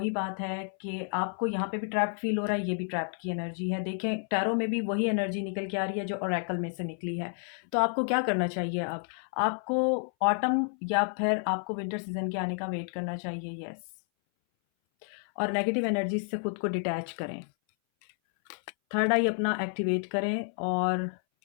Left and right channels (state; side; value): silent; right; 58 dB below the other